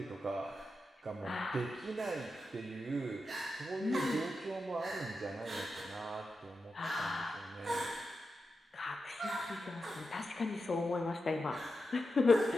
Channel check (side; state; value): both; normal; correlation 0.89